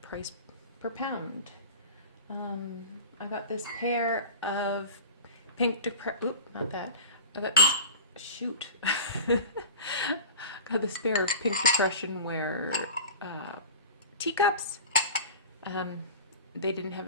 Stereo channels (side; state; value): both; inverted; correlation -0.35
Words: price per pound. I got this pair of pink not that. I got this, shoot. Got this pair of pink depression wear teacups. They didn't